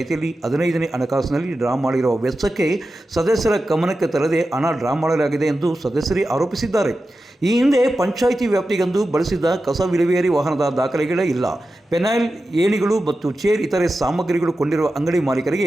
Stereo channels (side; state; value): both; normal; correlation 0.92